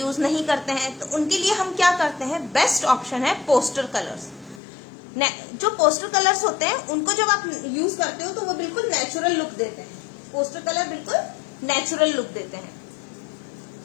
नहीं करते हैं, तो उनके लिए हम क्या करते हैं, बेस्ट ऑप्शन है पोस्टर कलर्स। जो पोस्टर कलर्स होते हैं उनको जब आप यूज करते हो तो वो बिल्कुल नेचुरल लुक देते हैं। पोस्टर कलर बिल्कुल नेचुरल लुक देते हैं,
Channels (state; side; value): drops out; right; at 4.6 s